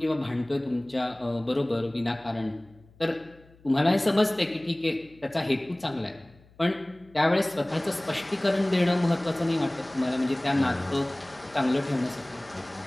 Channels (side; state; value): left; noise; hum, 27 dB below the sound